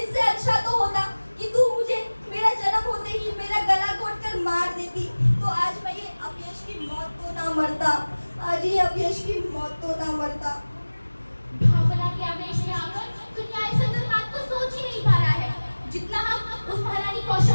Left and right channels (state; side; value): inverted; both; correlation -1.00